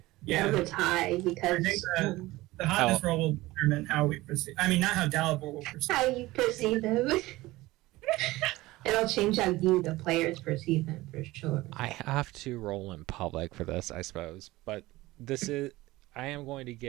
Yeah. That was high I because think the hotness roll will determine how we proceed. I mean, not how Dalibor will proceed. how you perceive them. It'll change how you, the players, perceive them for sure. I have to roll in public for this, I suppose, but I am going to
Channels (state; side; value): quieter; left; 18.8 dB